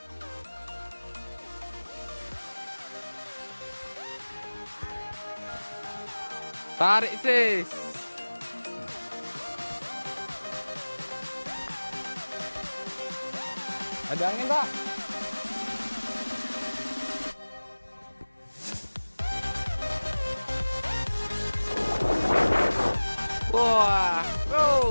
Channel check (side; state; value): both; inverted; correlation -1.00